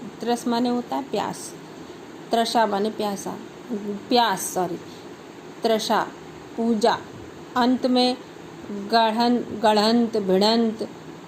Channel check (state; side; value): identical; both; correlation 1.00